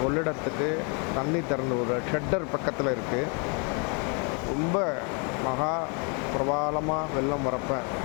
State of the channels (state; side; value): quieter; right; 35.6 dB